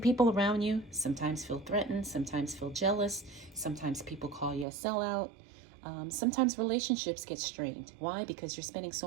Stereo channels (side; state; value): left; drops out; at 4.7 s